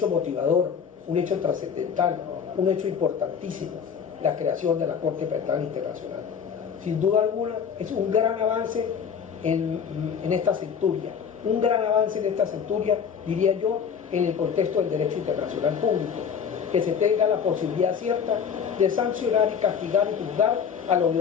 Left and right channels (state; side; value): quieter; right; 7.0 dB